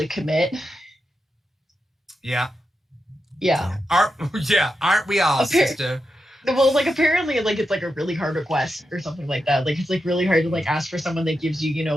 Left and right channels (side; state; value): both; normal; correlation 0.87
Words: commit. Yeah. Yeah. Aren't we all, sister? Well, like apparently, like it's like a really hard request or something like that. Like it's like really hard to like ask for someone that gives you, you